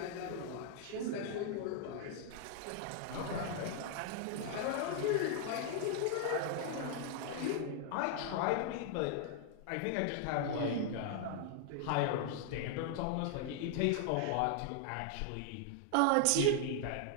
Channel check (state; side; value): different; both; correlation 0.00